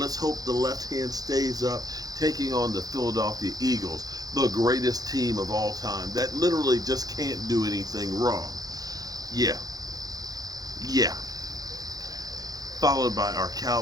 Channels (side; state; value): left; late; 0.18 ms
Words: hope the left hand stays up, taking on the Philadelphia Eagles, the greatest team of all time that literally just can't do anything wrong. Yeah. Followed by our